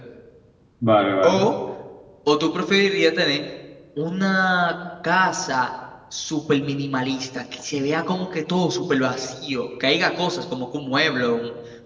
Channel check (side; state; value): both; identical; correlation 1.00